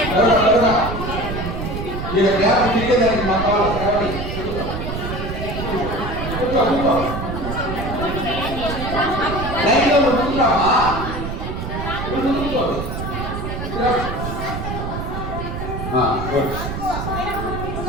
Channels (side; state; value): right; noise; rumble, 5 dB below the sound